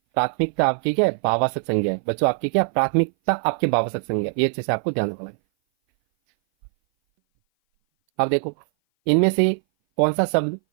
प्राथमिकता आपकी क्या है? भाववाचक संज्ञा है। बच्चों आपकी क्या? प्राथमिकता आपके भाववाचक संज्ञा, ये अच्छे से आपको ध्यान रखना है। अब देखो, इनमें से कौन सा शब्द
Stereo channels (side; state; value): left; silent; 59 dB below the other